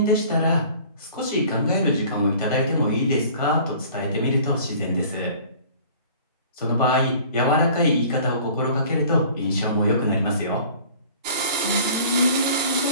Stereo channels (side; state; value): both; inverted; correlation -0.48